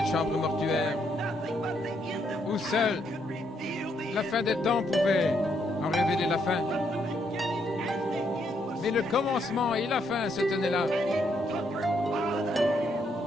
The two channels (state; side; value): normal; both; correlation 0.75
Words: chambre mortuaire, où seule la fin des temps pouvait en révéler la fin. Mais le commencement et la fin se tenaient là.